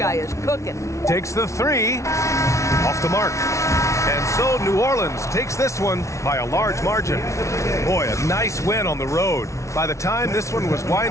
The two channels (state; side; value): late; right; 0.14 ms